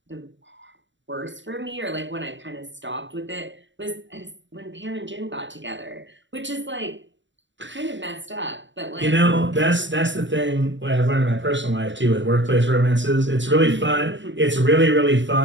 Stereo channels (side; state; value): left; late; 0.54 ms